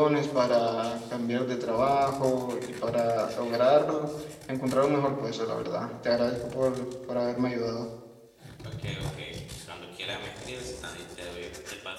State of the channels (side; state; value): both; identical; correlation 1.00